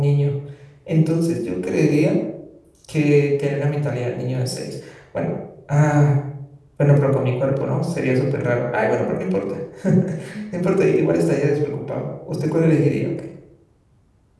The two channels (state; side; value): identical; both; correlation 1.00